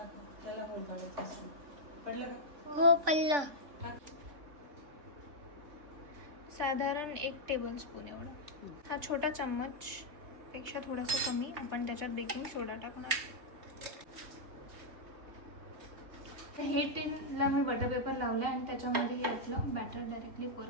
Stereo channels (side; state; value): left; late; 3.5 ms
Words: त्याला पडलं का? हो पडलं. साधारण 1 टेबलस्पून एवढं. हा छोटा चम्मच पेक्षा थोडासा कमी आपण त्याच्यात बेकिंग सोडा टाकणार. हे टिनला मी बटर पेपर लावलं आणि त्याच्यामध्ये हे आपलं बॅटर डायरेक्टली पोर